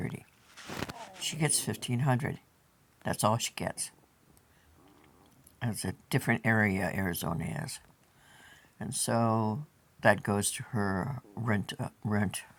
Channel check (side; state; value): both; identical; correlation 1.00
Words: She gets 1,500. That's all she gets. It's a different area Arizona is, and so that goes to her rent